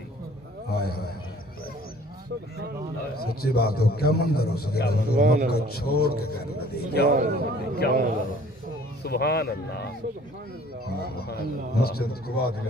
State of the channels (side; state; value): both; normal; correlation 0.53